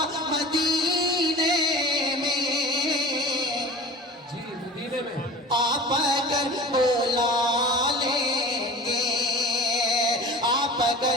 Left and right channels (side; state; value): both; normal; correlation 0.38